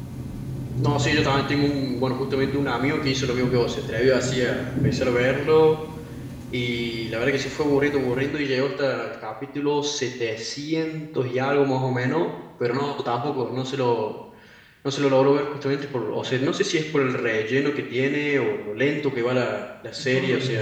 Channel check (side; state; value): both; identical; correlation 1.00